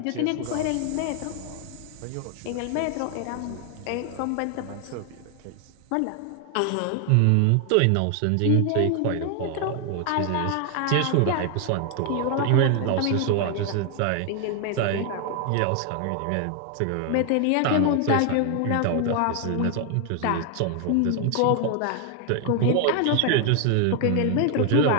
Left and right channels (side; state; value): both; different; correlation 0.00